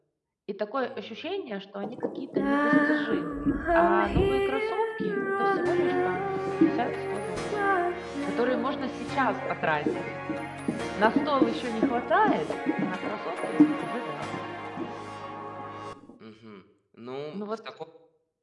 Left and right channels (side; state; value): both; identical; correlation 1.00